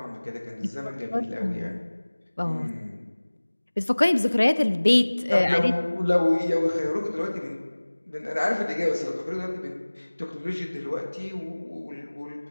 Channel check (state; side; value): inverted; both; correlation -1.00